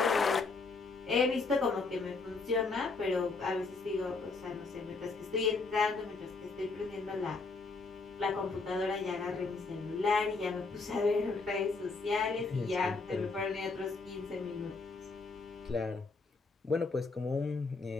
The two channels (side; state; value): right; quieter; 4.0 dB